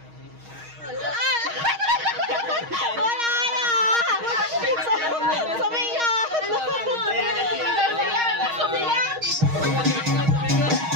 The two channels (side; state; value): left; late; 6.4 ms